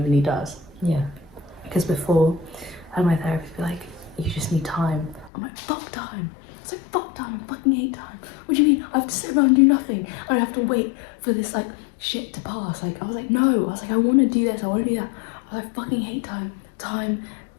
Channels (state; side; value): drops out; right; at 5.3 s